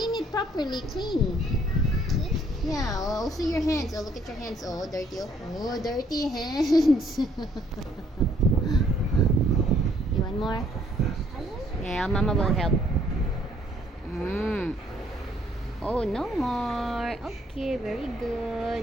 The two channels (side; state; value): both; normal; correlation 0.65